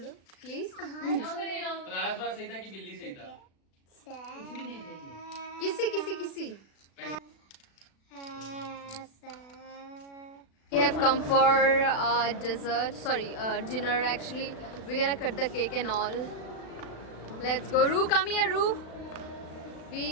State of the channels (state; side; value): late; right; 36 ms